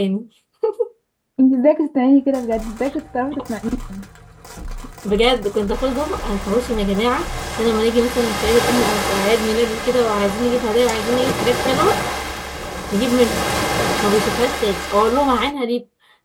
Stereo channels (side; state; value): both; identical; correlation 1.00